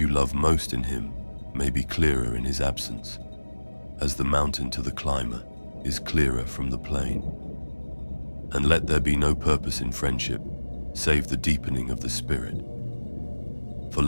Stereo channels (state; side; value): inverted; both; correlation -1.00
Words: love most in him may be clearer in his absence, as the mountain to the climber is clearer from the plain. And let there be no purpose in friendship, save the deepening of the spirit. For